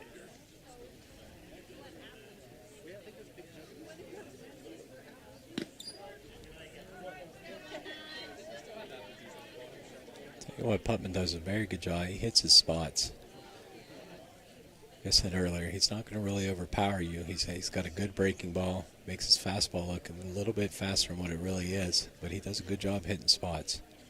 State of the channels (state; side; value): identical; both; correlation 1.00